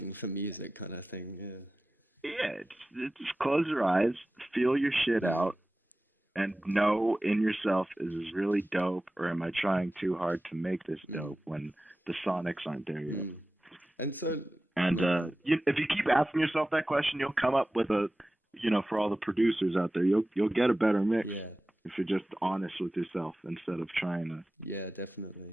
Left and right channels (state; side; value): normal; both; correlation 0.94